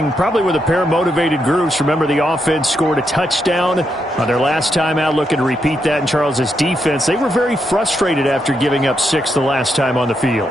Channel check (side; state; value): both; normal; correlation 0.81